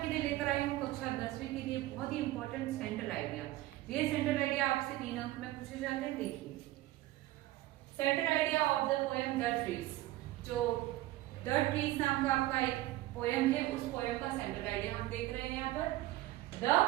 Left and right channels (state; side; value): quieter; left; 16.8 dB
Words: लिए लेकर आई हूँ कक्षा 10वीं के लिए बहुत ही इंपॉर्टेंट सेंट्रल आइडिया। ये सेंट्रल आइडिया आपसे 3 अंक में पूछे जाते हैं। देखिए, central idea of the poem the trees. जो द ट्रीज नाम का आपका एक पोएम है, उस पोएम का सेंट्रल आइडिया हम देख रहे हैं यहाँ पर। The